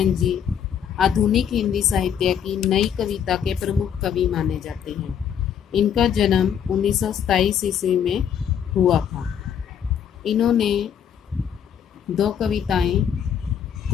जी आधुनिक हिंदी साहित्य की नई कविता के प्रमुख कवि माने जाते हैं। इनका जन्म 1927 ईस्वी में हुआ था। इन्होंने 2 कविताएं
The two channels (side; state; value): right; quieter; 8.6 dB